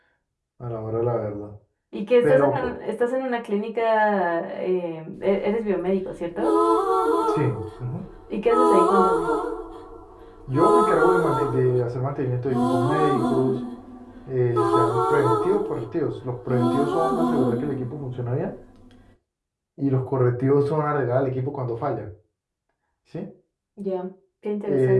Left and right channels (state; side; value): identical; both; correlation 1.00